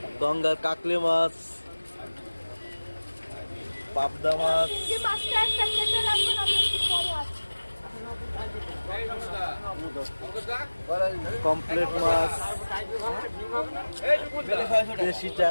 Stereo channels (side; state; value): both; inverted; correlation -1.00